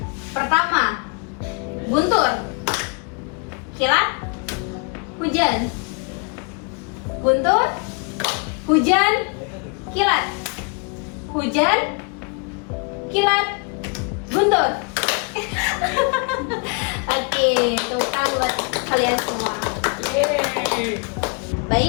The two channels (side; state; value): right; quieter; 36.0 dB